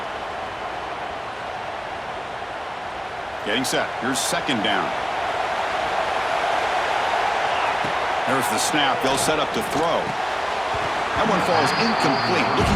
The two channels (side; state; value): both; identical; correlation 1.00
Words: Getting set. Here's second down. There's the snap. They'll set up to throw. That one falls incomplete.